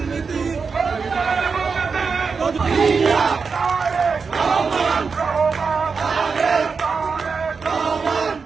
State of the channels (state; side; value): quieter; left; 5.1 dB